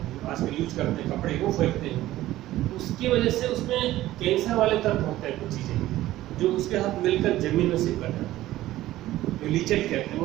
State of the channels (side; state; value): left; quieter; 15.3 dB